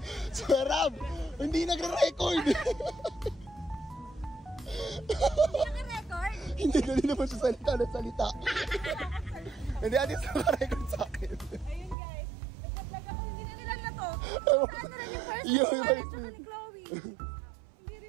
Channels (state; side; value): drops out; left; at 12.0 s